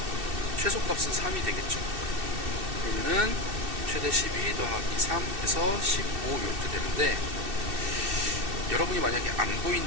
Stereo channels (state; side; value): late; left; 2.6 ms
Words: 최소값은 3이 되겠죠. 그러면은 최대 12 더하기 3 해서 15 이렇게 되는데, 여러분이 만약에 안